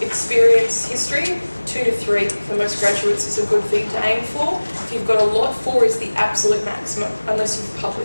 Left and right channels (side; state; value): both; inverted; correlation -1.00